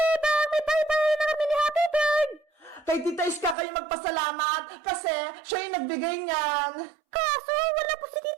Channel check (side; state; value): left; drops out; at 3.6 s